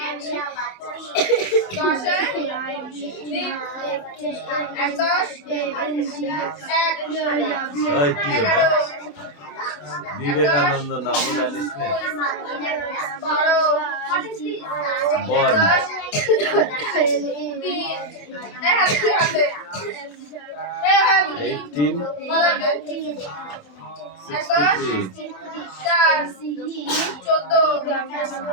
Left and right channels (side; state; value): right; late; 27 ms